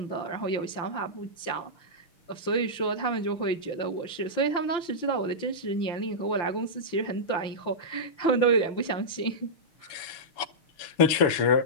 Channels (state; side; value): late; right; 5.9 ms